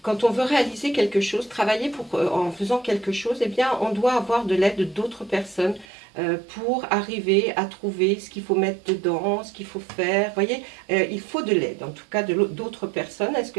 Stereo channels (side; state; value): left; drops out; at 5.9 s